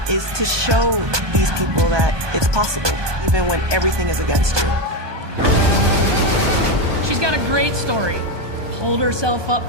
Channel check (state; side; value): late; left; 1.2 ms